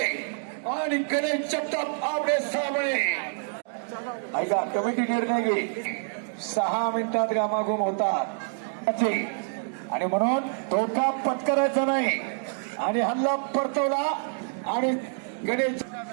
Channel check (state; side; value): silent; left; digital silence